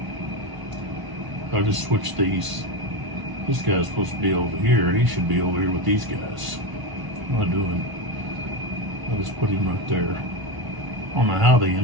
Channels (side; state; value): left; late; 1.0 ms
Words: I'll just switch these. This guy's supposed to be over here. He should be over here with these guys. What am I doing? I'll just put him right there. I don't know how they